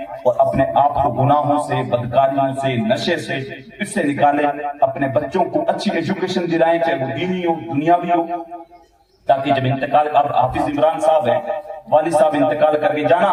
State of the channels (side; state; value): both; identical; correlation 1.00